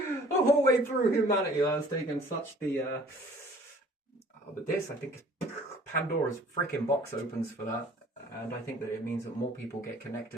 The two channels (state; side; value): normal; both; correlation 0.52